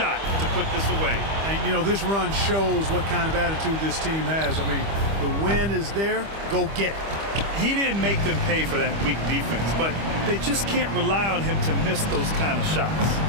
to put this away. And, you know, this run shows what kind of attitude this team has. I mean, the win is there. Go get it. He didn't make them pay for that weak defense, but they just can't rely on him to miss those kind of shots.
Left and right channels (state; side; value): late; left; 25 ms